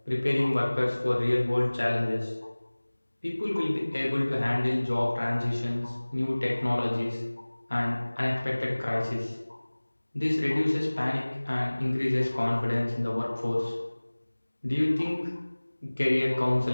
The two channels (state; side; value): inverted; both; correlation -1.00